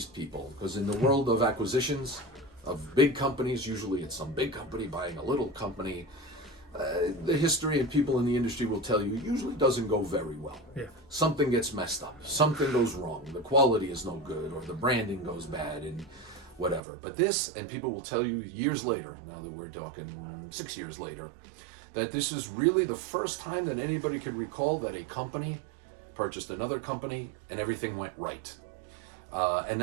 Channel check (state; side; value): drops out; left; at 16.8 s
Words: people, because in the world of acquisitions of big companies, usually it's some big company buying a little company, the history and people in the industry will tell you usually doesn't go very well. Yeah. Something gets messed up, something goes wrong, the quality is no good, or the branding goes bad, and whatever. But this, and people will tell you years later, now that we're talking 6 years later, that this is really the first time that anybody could recall that a company purchased another company and everything went right. And